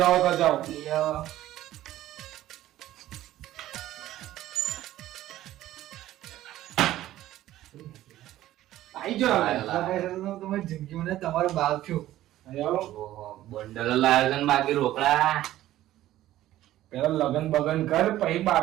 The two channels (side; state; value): left; quieter; 14.2 dB